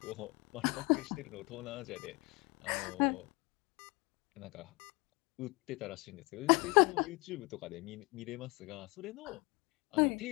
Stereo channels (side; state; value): right; quieter; 26.7 dB